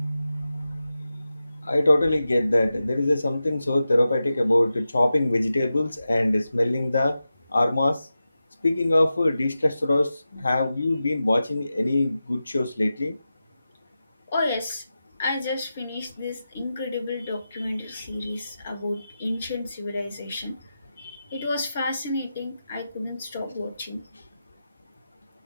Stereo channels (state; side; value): inverted; both; correlation -0.92